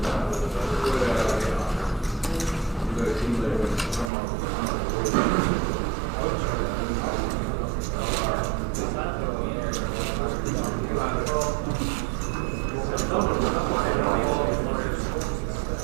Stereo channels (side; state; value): left; drops out; at 4.1 s